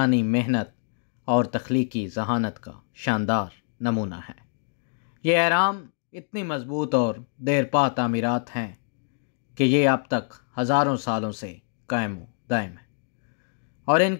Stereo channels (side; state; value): right; silent; 61 dB below the other